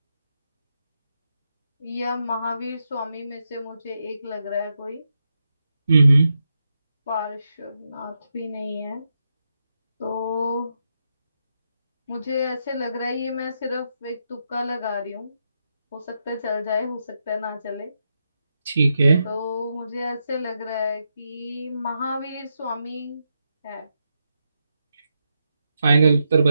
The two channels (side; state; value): both; inverted; correlation -0.84